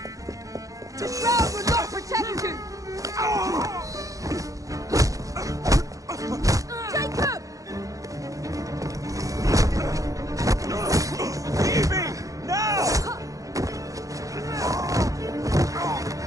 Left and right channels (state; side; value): late; left; 0.16 ms